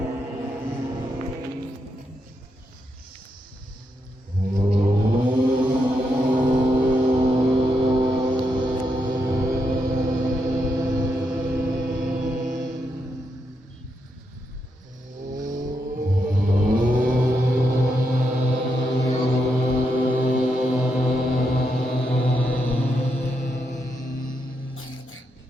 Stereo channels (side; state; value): both; normal; correlation 0.82